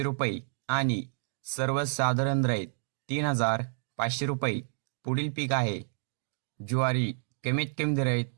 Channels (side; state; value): left; silent; digital silence